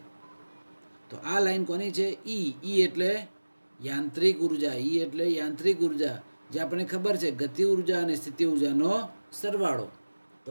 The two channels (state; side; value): inverted; both; correlation -1.00